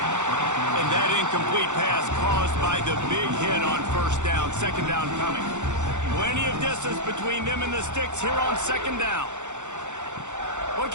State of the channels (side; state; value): left; late; 0.84 ms